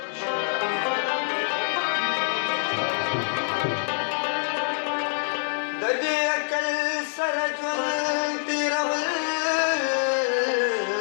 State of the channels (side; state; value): right; silent; digital silence